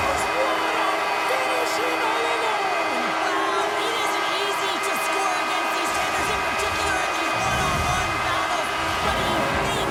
Finishing all alone. Wow, it isn't easy to score against these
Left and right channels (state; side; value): identical; both; correlation 1.00